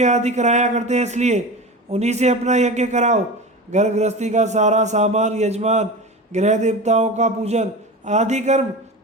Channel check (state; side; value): normal; both; correlation 0.29